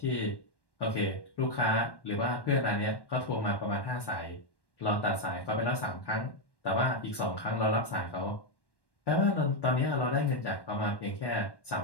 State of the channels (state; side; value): late; right; 1.1 ms